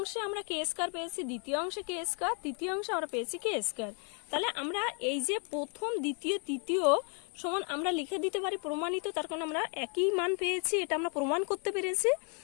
আমরা কে স্কোয়ার পেয়েছি, দ্বিতীয় অংশে কে স্কোয়ার, তৃতীয় অংশে আমরা পেয়েছি কে স্কোয়ার। তাহলে আমরা এই যে প্রথম দ্বিতীয় তৃতীয় সমান আমরা লিখে দিতে পারি প্রমাণিত, তার কারণ আমরা একই মান পেয়েছি, এটা আমরা প্রমাণ করতে পেরেছি।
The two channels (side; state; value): right; quieter; 39.8 dB